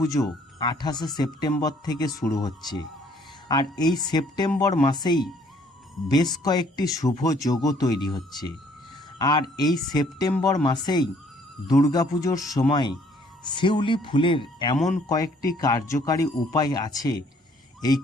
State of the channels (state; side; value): normal; both; correlation 0.62